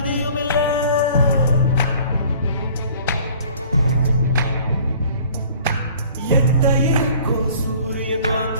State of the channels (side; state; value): both; inverted; correlation -0.52